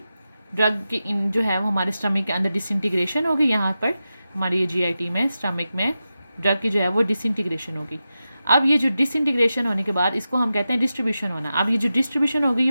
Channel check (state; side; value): inverted; both; correlation -0.92